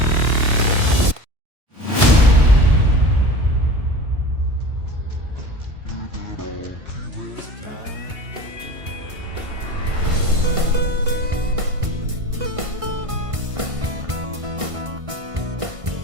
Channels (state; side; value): late; left; 1.5 ms